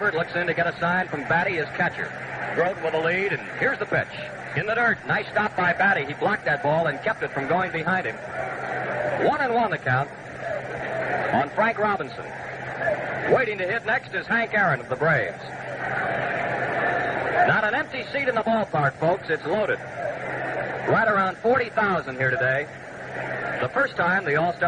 looks in to get a sign from Batty, his catcher. Grote with a lead, and here's the pitch. In the dirt. Nice stop by Batty. He blocked that ball and kept it from going behind him. 1-1 the count on Frank Robinson. Waiting to hit next is Hank Aaron of the Braves. Not an empty seat in the ballpark, folks. It's loaded. Right around 40,000 here today. The first time the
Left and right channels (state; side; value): identical; both; correlation 1.00